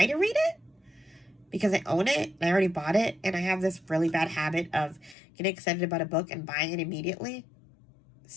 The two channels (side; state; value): right; drops out; at 5.2 s